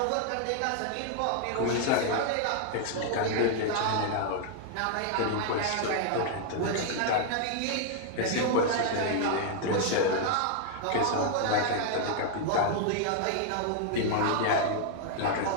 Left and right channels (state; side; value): different; both; correlation 0.00